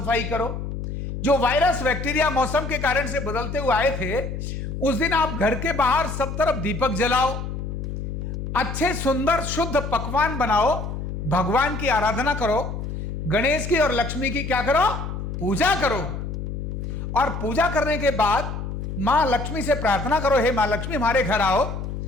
करो। जो वायरस, बैक्टीरिया मौसम के कारण से बदलते हुए आए थे, उस दिन आप घर के बाहर सब तरफ दीपक जलाओ, अच्छे सुंदर शुद्ध पकवान बनाओ, भगवान की आराधना करो, गणेश की और लक्ष्मी की क्या करो? पूजा करो। और पूजा करने के बाद मां लक्ष्मी से प्रार्थना करो, हे मां लक्ष्मी हमारे घर आओ।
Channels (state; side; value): noise; left; hum, 5 dB below the sound